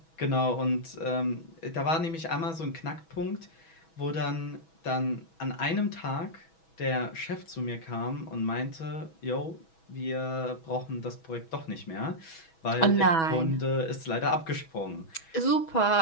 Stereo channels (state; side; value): late; right; 6.2 ms